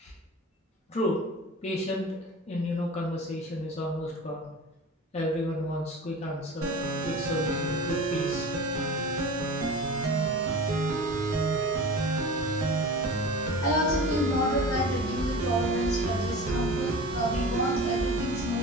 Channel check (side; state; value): both; normal; correlation 0.35